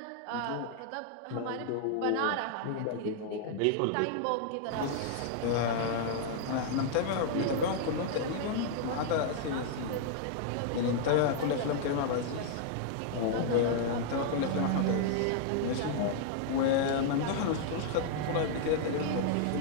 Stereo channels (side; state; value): both; different; correlation 0.00